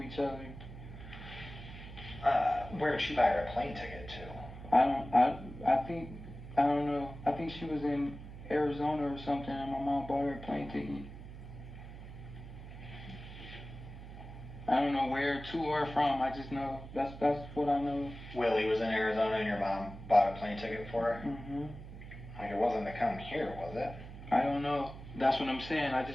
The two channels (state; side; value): noise; right; hum, 13 dB below the sound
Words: each other. Where did she buy her a plane ticket to? I don't know. I think she was in Arizona or something, and my mom bought her a plane ticket. I don't know where to or from. I just know that's what I know. Willie was in Arizona and your mom bought a plane ticket for her? Mm-hmm. Like, it wasn't to come here, was it? I don't know. That's what I'm saying. I